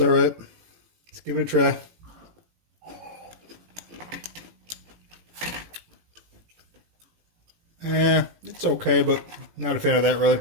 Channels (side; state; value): left; late; 18 ms